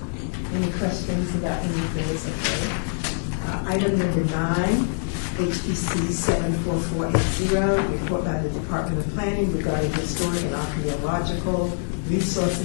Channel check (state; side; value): silent; right; digital silence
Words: Any questions about any of those? Okay. Item number 9, HPC 74480, report by the Department of Planning regarding historic and archaeological